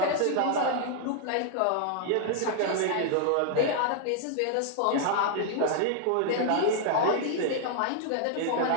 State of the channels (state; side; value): different; both; correlation 0.00